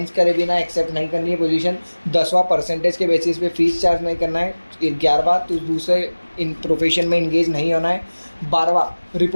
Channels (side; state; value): both; inverted; correlation -1.00